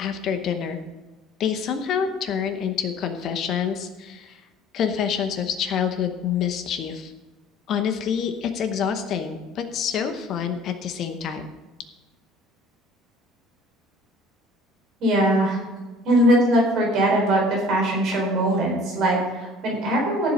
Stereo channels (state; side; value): normal; both; correlation 0.50